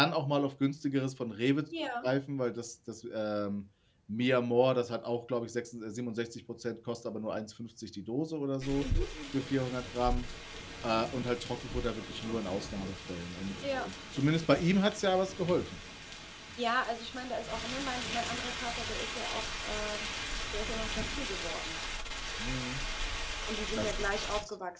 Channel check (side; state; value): both; identical; correlation 1.00